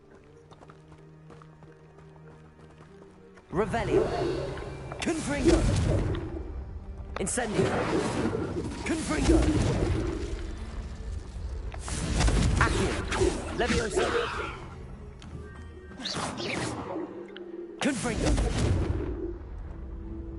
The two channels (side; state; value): both; identical; correlation 1.00